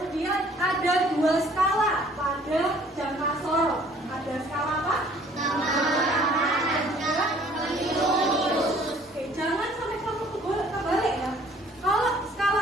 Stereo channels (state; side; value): normal; both; correlation 0.56